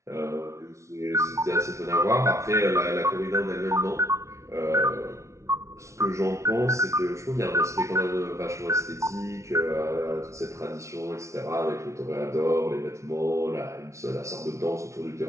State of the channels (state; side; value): late; left; 0.14 ms